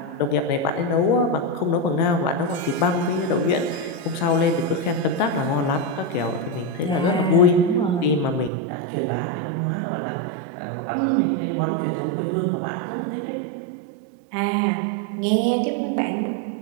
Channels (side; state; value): left; drops out; at 8.5 s